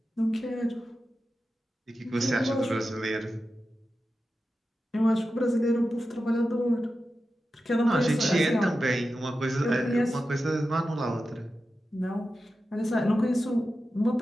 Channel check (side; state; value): both; normal; correlation 0.92